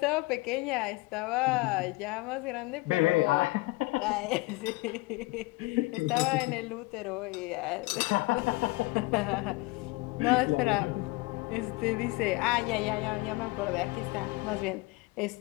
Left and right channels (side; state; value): right; quieter; 22.9 dB